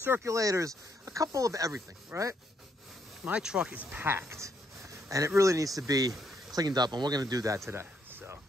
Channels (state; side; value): normal; both; correlation 0.74